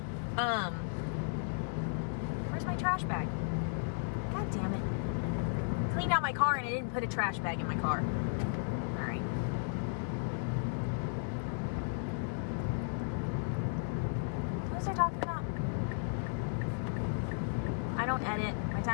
Where's my trash bag? God damn it. Cleaned out my car and I didn't put a trash bag in my car. Alright. What was I talking about? I don't edit. My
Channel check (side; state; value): right; silent; digital silence